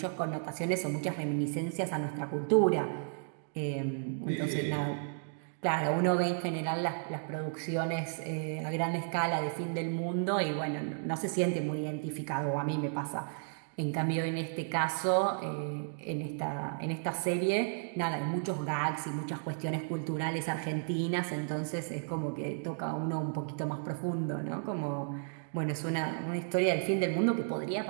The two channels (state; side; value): silent; left; digital silence